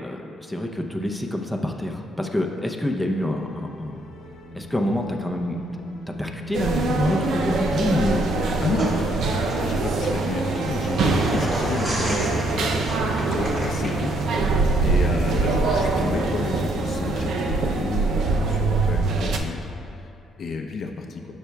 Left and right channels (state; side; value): normal; both; correlation 0.70